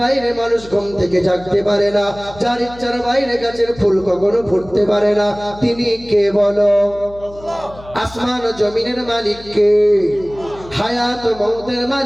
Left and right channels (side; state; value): left; noise; hum, 19 dB below the sound